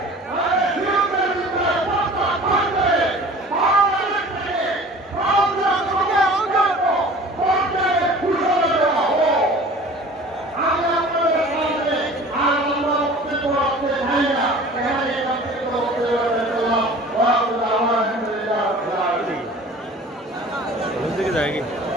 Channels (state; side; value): normal; both; correlation 0.44